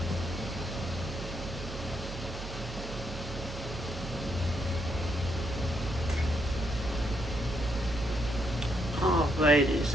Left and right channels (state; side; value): noise; right; hum, 9 dB below the sound